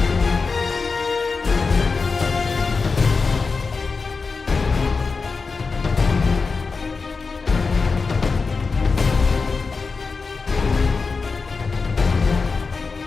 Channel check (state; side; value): quieter; right; 4.5 dB